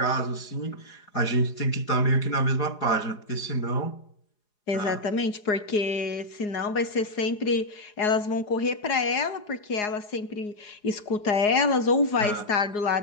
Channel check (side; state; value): right; late; 4.8 ms